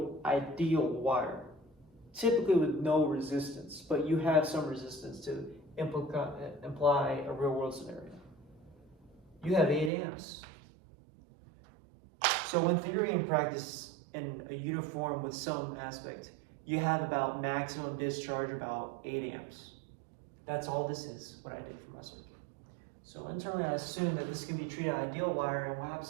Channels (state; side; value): drops out; left; at 9.9 s